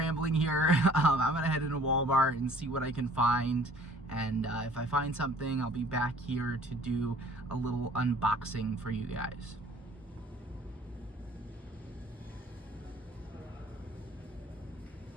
here. I'm gonna head into Walmart and see what I can find, and if I find something, I'll be back here to do a little unboxing for you guys.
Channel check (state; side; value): normal; both; correlation 0.53